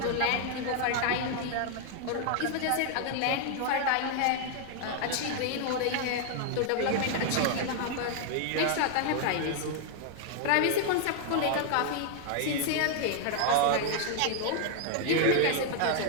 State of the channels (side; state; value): both; different; correlation 0.00